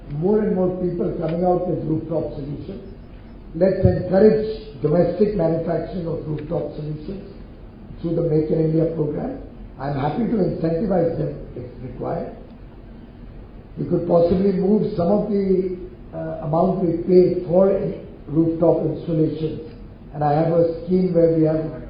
more and more people coming out with rooftop solutions. Let's encourage domestic manufacturing of rooftop solutions through the Make in India program. I'm happy to incentivize them if required. We could possibly move some of the amount we pay for rooftop installations. And I have a scheme where we have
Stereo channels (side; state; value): both; identical; correlation 1.00